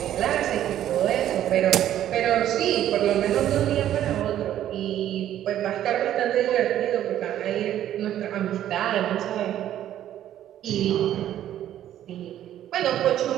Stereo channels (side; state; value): left; quieter; 11.7 dB